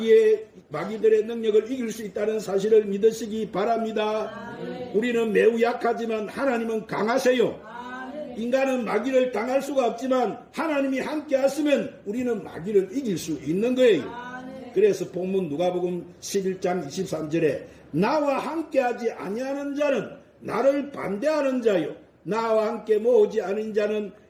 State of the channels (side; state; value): both; identical; correlation 1.00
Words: 능력을 이길 수 있다는 사실을 믿으시기 바랍니다. 우리는 매우 약하지만 하나님은 강하세요. 인간은 마귀를 당할 수가 없지만 하나님이 함께 하시면 우리는 마귀를 이길 수 있는 거예요. 그래서 본문 누가복음 11장 23절에 나와 함께하지 아니하는 자는 나를 반대하는 자요 나와 함께 모으지 않은 자는